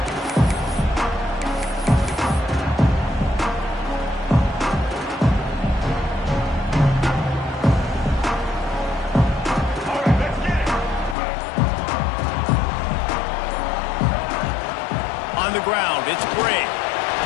On the ground, it's Bray.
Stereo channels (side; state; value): right; drops out; at 11.2 s